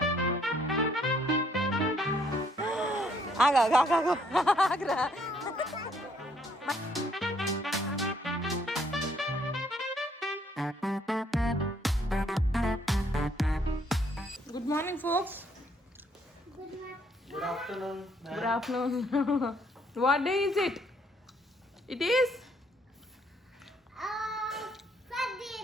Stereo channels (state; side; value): normal; both; correlation 0.67